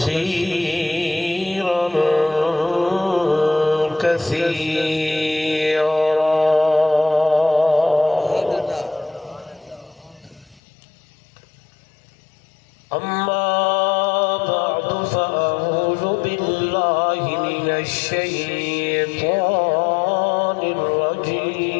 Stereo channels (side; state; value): right; drops out; at 10.6 s